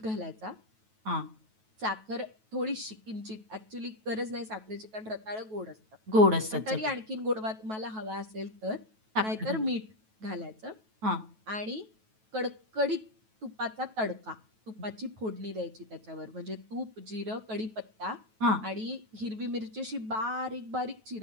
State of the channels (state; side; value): late; left; 9.2 ms